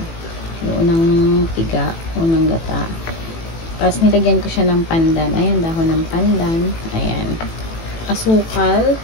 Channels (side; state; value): right; late; 18 ms